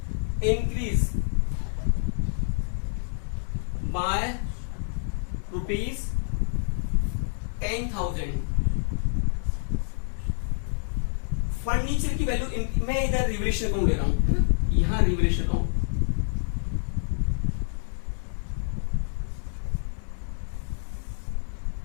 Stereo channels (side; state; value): right; silent; 56 dB below the other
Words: increase by ₹10,000। Furniture की वैल्यू, मैं इधर रिवैल्यूएशन अकाउंट ले रहा हूं, यहां रिवैल्यूएशन अकाउंट,